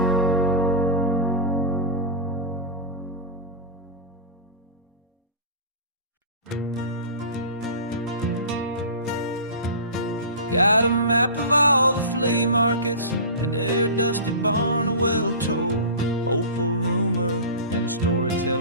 Got a map of all the flea markets, and their dusty barn, a well-told hopeful rumor, and a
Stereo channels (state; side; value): inverted; both; correlation -0.32